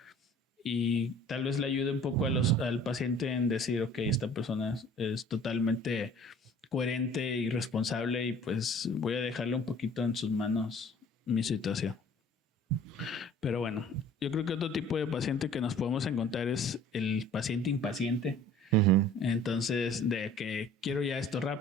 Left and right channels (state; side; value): normal; both; correlation 0.50